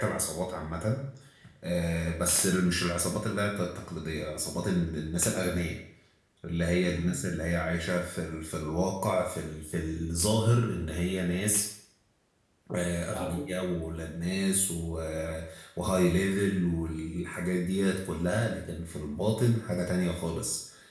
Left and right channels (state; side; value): identical; both; correlation 1.00